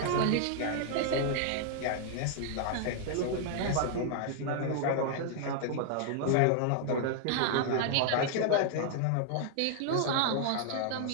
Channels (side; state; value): both; different; correlation -0.01